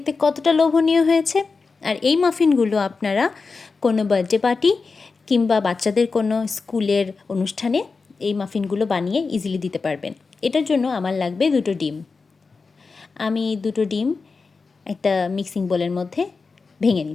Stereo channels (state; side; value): quieter; right; 4.5 dB